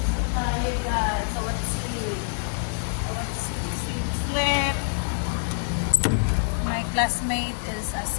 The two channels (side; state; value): right; silent; 61 dB below the other